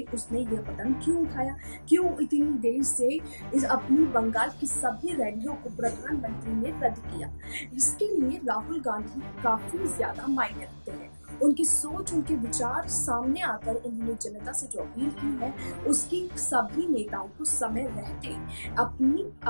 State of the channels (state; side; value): inverted; both; correlation -1.00